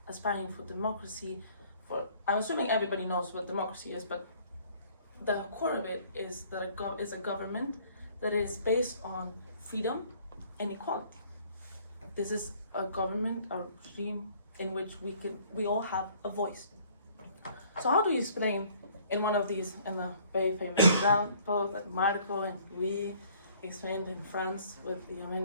aspiring for democracy. I'm assuming everybody knows what democracy is, but the core of it is that it's a government that is based on freedom and equality. This is a government, a regime in which we all have a voice. So how do you explain in one of these, in the very famous example that Marco and Louis explained in France with the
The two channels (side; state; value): both; inverted; correlation -0.58